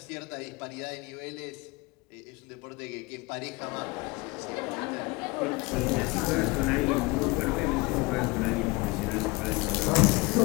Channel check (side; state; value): right; quieter; 24.5 dB